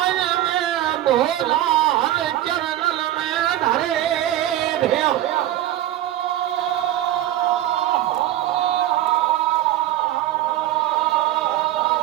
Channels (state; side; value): quieter; left; 13.5 dB